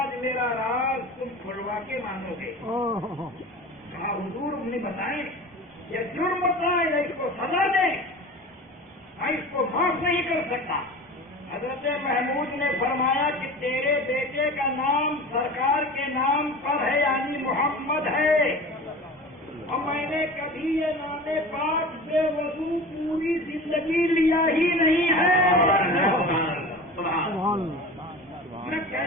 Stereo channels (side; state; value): both; normal; correlation 0.36